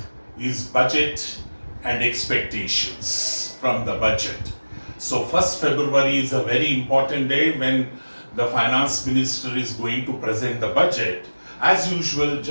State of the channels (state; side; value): inverted; both; correlation -1.00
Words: is budget and expectations from the budget. So 1st February is a very important day when the finance minister is going to present the budget. As usual,